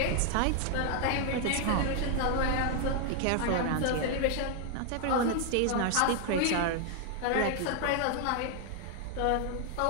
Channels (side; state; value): both; different; correlation 0.00